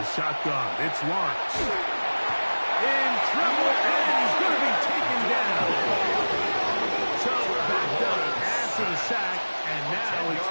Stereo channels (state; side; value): inverted; both; correlation -1.00